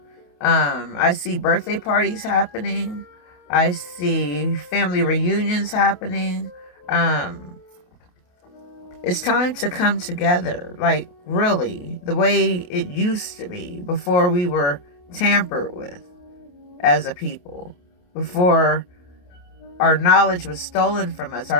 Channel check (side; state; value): right; late; 28 ms